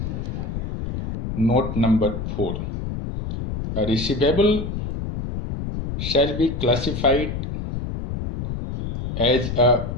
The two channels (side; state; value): left; noise; rumble, 5 dB below the sound